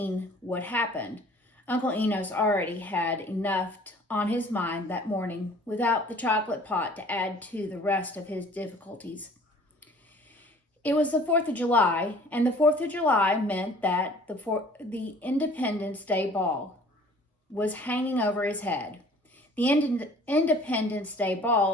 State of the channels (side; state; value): both; normal; correlation 0.51